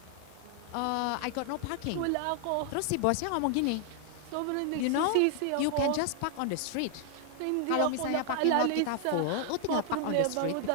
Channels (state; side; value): different; both; correlation 0.00